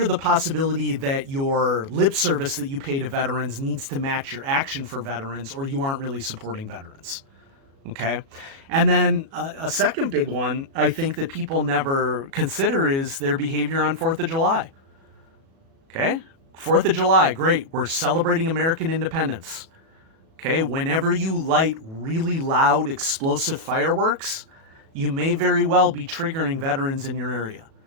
the possibility that your lip service that you pay to veterans needs to match your action for veterans, or you aren't really supporting veterans. Okay. And then a second big one I think that people never consider is their behavior on 4th of July. Okay. 4th of July, great. We're celebrating American independence. Okay. Whenever you light really loud explosive fireworks, you may very well be triggering veterans in your area.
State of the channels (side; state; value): left; late; 36 ms